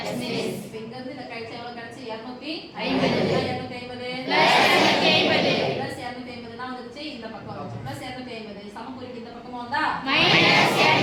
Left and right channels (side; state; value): both; identical; correlation 1.00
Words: Yes miss. இப்போ இங்க இருந்து இத கழிச்சா எவ்வளவு கிடைச்சு? 250 250 பிளஸ் 250 தான் வந்துச்சு, இந்த பக்கம் வந்துச்சு. பிளஸ் 250 சமக்குறிக்கு இந்த பக்கமா வந்தா minus